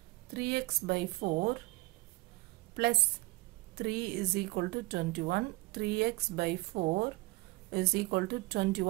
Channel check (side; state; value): left; quieter; 23.0 dB